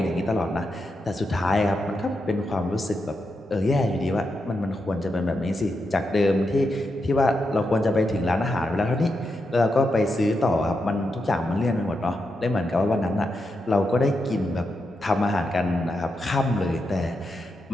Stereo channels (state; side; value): normal; both; correlation 0.85